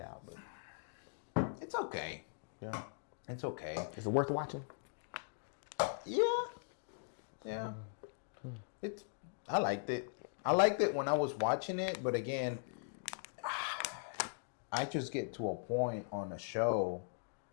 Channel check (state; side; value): silent; right; digital silence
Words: But it's okay. yeah, It's okay. is it worth watching? Yeah. Yeah. I liked it. I liked it when I was watching it, but again, I just get to a point on a show